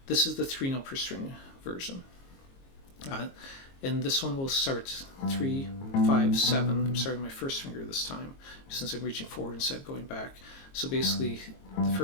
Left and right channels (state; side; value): late; right; 22 ms